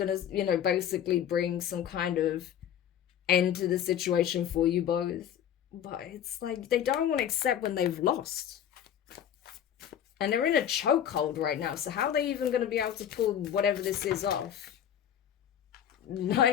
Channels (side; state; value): right; quieter; 9.7 dB